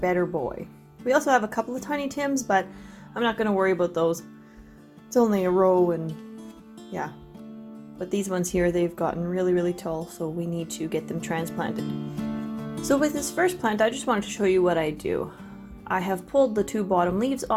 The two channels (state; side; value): identical; both; correlation 1.00